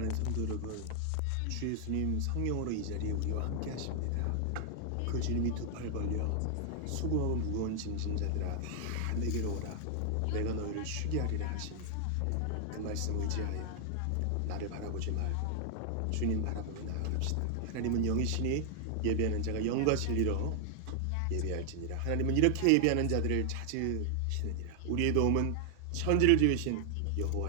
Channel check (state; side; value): different; both; correlation 0.00